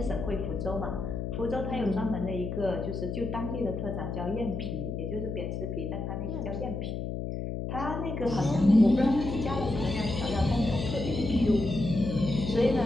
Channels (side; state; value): left; noise; hum, 4 dB below the sound